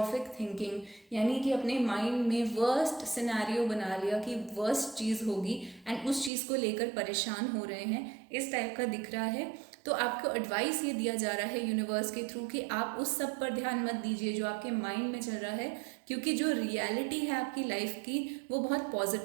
थिंकिंग, यानी कि अपने माइंड में वर्स्ट सिनेरियो बना लिया कि वर्स्ट चीज़ होगी एंड उस चीज़ को लेकर परेशान हो रहे हैं, इस टाइप का दिख रहा है। तो आपको एडवाइस ये दिया जा रहा है यूनिवर्स के थ्रू कि आप उस सब पर ध्यान मत दीजिए जो आपके माइंड में चल रहा है, क्योंकि जो रियलिटी है आपकी लाइफ की वो बहुत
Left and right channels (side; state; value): left; drops out; at 6.3 s